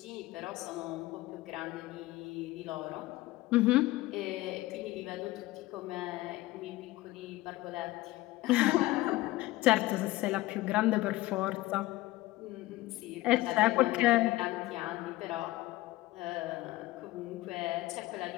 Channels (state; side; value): quieter; right; 18.4 dB